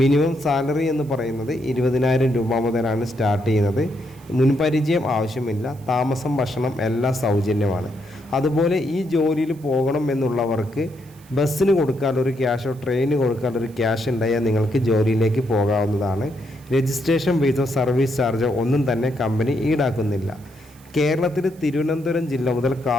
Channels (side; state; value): right; noise; hiss, 27 dB below the sound